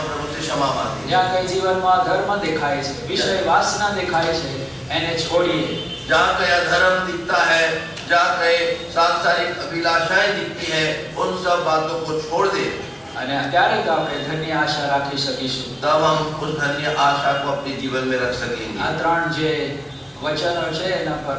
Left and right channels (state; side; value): identical; both; correlation 1.00